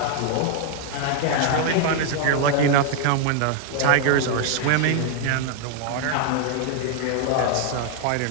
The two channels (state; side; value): different; both; correlation 0.00